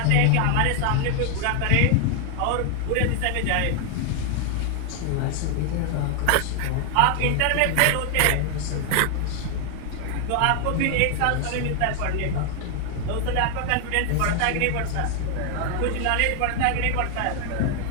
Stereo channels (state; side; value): different; both; correlation 0.00